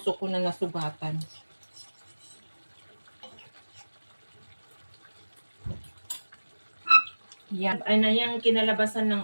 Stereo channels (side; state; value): both; inverted; correlation -1.00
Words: ko na nasugatan. Yan. Yung kinalabasan